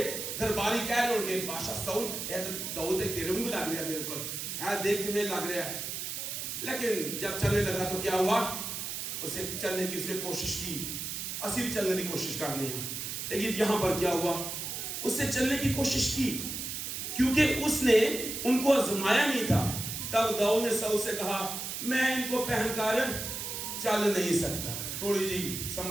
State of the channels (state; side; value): noise; right; hiss, 5 dB below the sound